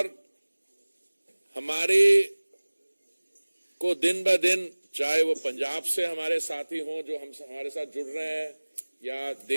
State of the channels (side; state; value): both; inverted; correlation -1.00